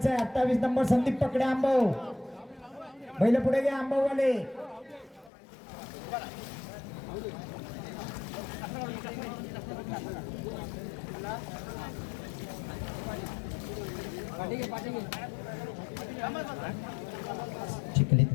28 नंबर संदीप पकडे आंबव पहिलं पुढे घ्या आंबववाले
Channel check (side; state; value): right; drops out; at 5.3 s